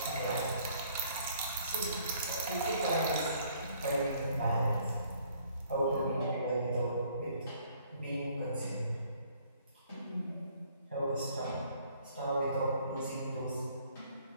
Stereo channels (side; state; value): both; inverted; correlation -0.61